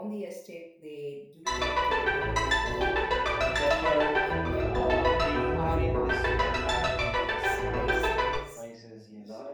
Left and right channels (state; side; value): identical; both; correlation 1.00